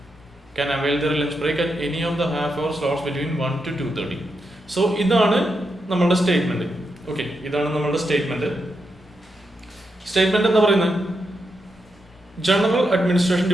can avail their lunch break at any of the half hour slots between 1 to 2:30. So ഇതാണ് നമ്മളുടെ statement. Okay, ഇതാണ് നമ്മളുടെ statement. Statement എന്താ പറയുന്നത്? General administration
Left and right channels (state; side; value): normal; both; correlation 0.84